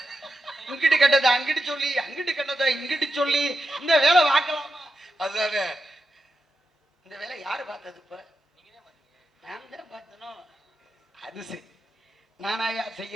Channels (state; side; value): normal; both; correlation 0.88